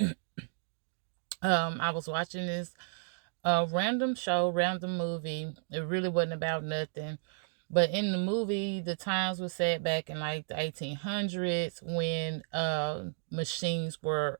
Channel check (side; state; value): left; silent; digital silence